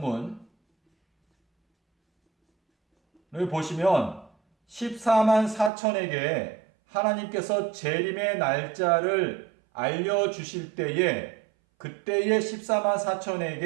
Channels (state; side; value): drops out; left; at 5.7 s